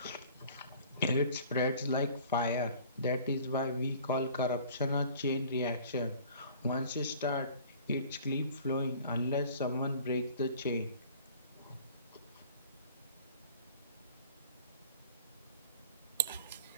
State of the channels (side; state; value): both; inverted; correlation -0.48